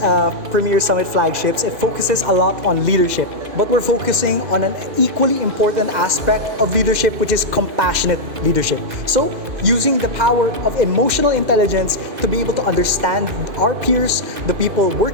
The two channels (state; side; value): late; left; 2.1 ms